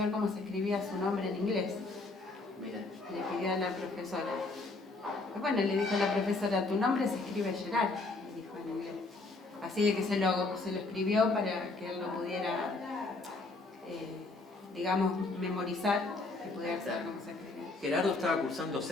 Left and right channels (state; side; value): quieter; right; 3.4 dB